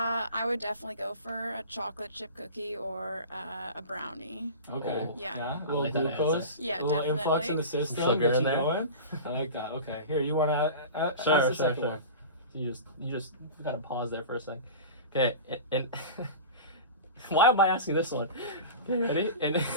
would definitely go for a chocolate chip cookie or a brownie. okay. Oh. Yeah. A little like that glucose. answer. Yeah, a little influx in definitely. the system. Sugar Get in you there. going. I like that. Okay. Here, you want to ask Sure. the second one? You just kind of pause there for a second. Okay, and why am I asking this one? Okay, ready? And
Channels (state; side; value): inverted; both; correlation -0.32